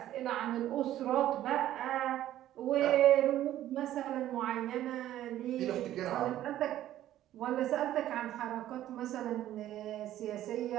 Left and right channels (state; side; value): quieter; left; 13.0 dB